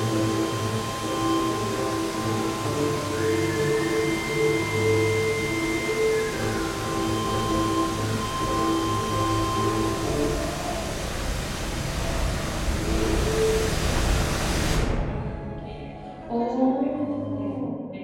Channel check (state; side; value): identical; both; correlation 1.00